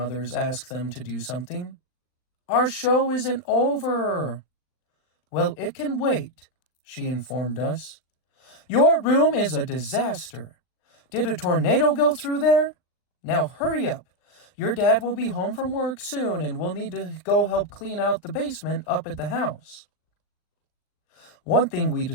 ask them to do something. "Our show isn't over." "Well, it can wait," she informed us. "Your room is a disaster. Did a tornado go through there? Now hurry up. Your dad will be home from work soon and we'll need to go help clean out the basement up at the house." One thing we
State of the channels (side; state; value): right; late; 39 ms